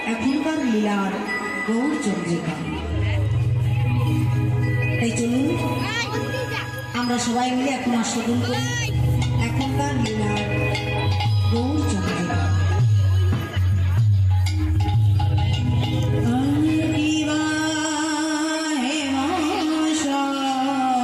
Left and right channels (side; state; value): both; identical; correlation 1.00